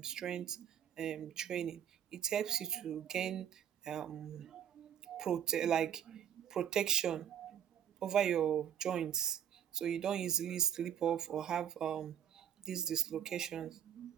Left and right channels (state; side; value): quieter; left; 9.1 dB